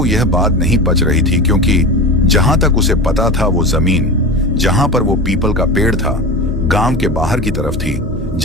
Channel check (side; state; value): both; normal; correlation 0.28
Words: यह बात नहीं पच रही थी, क्योंकि जहां तक उसे पता था वो जमीन जहां पर वो पीपल का पेड़ था गांव के बाहर की तरफ थी,